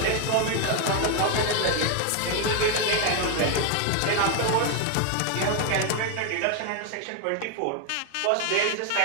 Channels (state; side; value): different; both; correlation 0.01